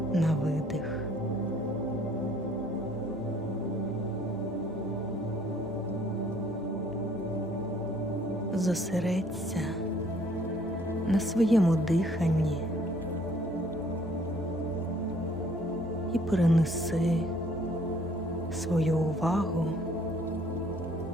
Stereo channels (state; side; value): normal; both; correlation 0.60